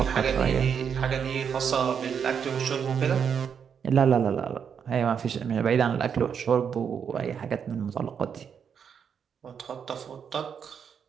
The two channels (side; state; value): left; quieter; 7.3 dB